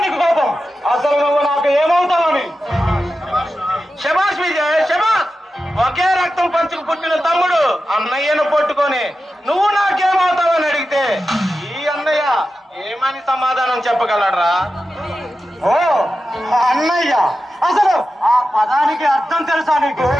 కోపం? అసలు నువ్వు నాకు ఏమవుతావని? శబాష్ విజయ్, శబాష్. ఒకే రక్తం పంచుకు పుట్టిన తమ్ముడు అన్నయ్యను పట్టుకొని నువ్వు నాకేమవుతావని అడిగితే ఈ అన్నయ్య ఏమని సమాధానం చెప్పగలరా? ఓ అన్నయ్య, అసలు ఆ పదానికి అర్థం తెలుసా నీకు?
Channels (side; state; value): both; normal; correlation 0.92